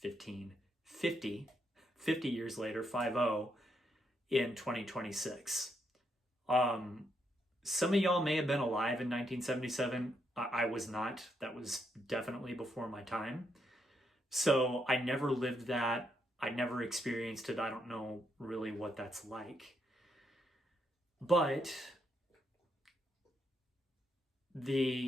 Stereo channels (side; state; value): both; normal; correlation 0.78